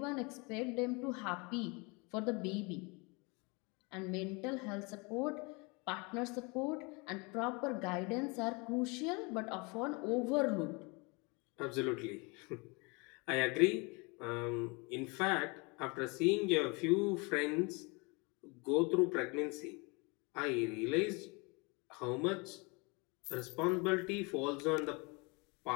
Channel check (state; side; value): quieter; right; 29.1 dB